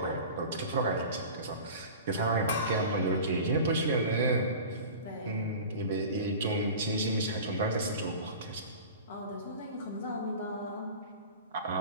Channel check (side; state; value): both; inverted; correlation -0.36